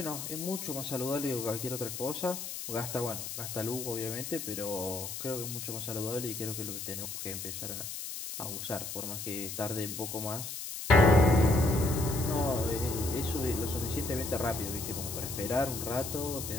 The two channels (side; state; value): left; noise; hiss, 7 dB below the sound